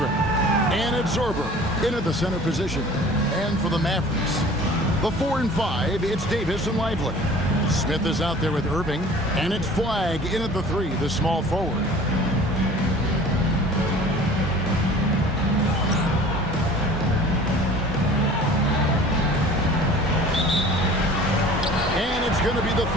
And it's Zorber in at the center position. And for the Mavericks, the 4 and 5, it's Davis and Lively. Smith is out there with Irving. And it's Flagg in at the 3, the small forward. Going to be the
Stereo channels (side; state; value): both; normal; correlation 0.45